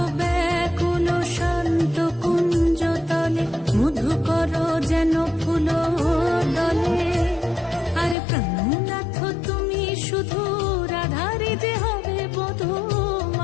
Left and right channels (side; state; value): right; drops out; at 8.2 s